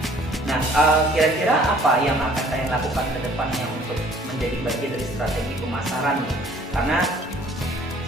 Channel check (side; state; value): both; normal; correlation 0.56